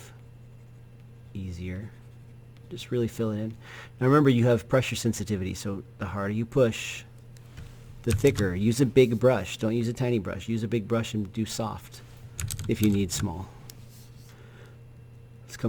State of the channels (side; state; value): both; identical; correlation 1.00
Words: easier. Just really fill it in. Now remember, you have pressure sensitivity, so the harder you push, the thicker. Use a big brush. Don't use a tiny brush. Use a big brush and do soft if you need small. Let's